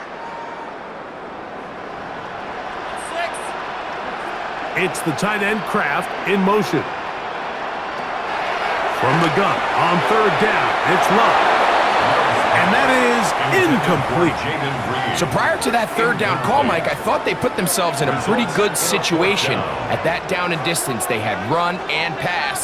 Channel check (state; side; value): identical; both; correlation 1.00